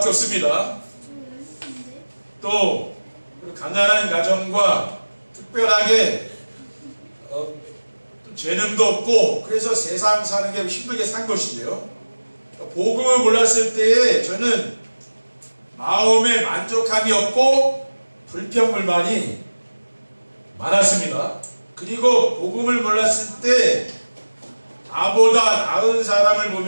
없습니다. 또 가난한 가정과 특별하게 또 재능도 없고 그래서 세상 사는 게 힘들게 산 것이죠. 복음을 몰랐을 때에 저는 마음에 만족함이 없고 불평불만이 많았습니다. 그리고 복음을 몰랐을 때 나보다 나은 사람을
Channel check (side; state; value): both; inverted; correlation -1.00